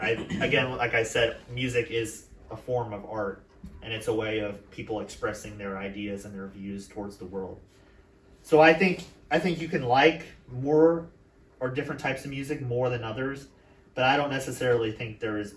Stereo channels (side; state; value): both; identical; correlation 1.00